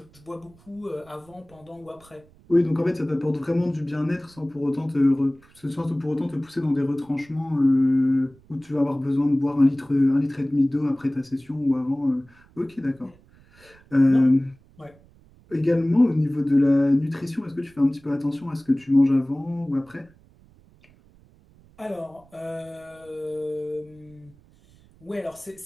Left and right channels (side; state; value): right; noise; rumble, 28 dB below the sound